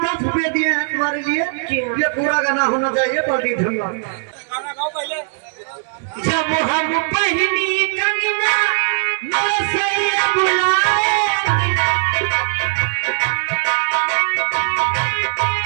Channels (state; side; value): silent; left; digital silence